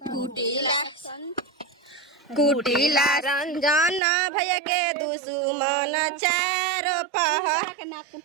कुटिला रंजन भैया के दुश्मन चार पहर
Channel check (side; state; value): left; drops out; at 4.0 s